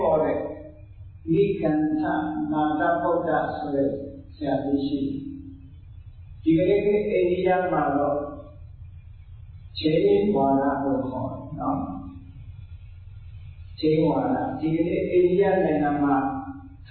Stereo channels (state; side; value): identical; both; correlation 1.00